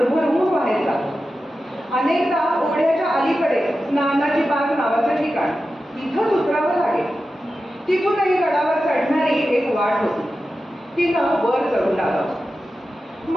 व्हायचा. अनेकदा ओढ्याच्या अलीकडे नानाची बाग नावाचं ठिकाण, तिथंच उतरावं लागेल. तिथूनही गडावर चढणारी एक वाट होती. तिनं वर चढू लागावं.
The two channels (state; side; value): normal; both; correlation 0.92